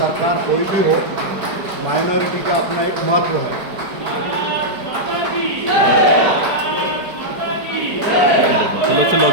कोई भी हो, माइनॉरिटी का अपना एक महत्व है। चलो चलो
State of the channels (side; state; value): left; late; 4.8 ms